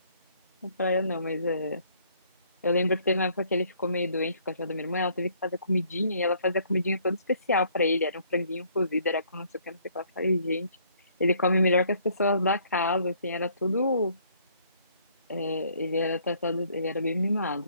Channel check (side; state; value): both; inverted; correlation -0.63